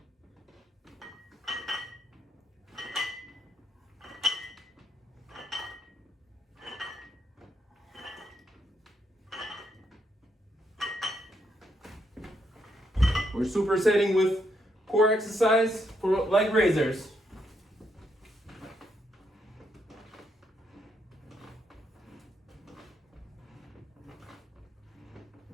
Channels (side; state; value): both; normal; correlation 0.77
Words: We're supersetting with core exercise for leg raisers.